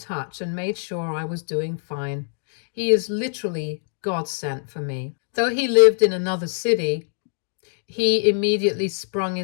and made sure I was doing fine. He is literally God sent for me. Though he lived in another city, he immediately sprung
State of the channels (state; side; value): silent; right; digital silence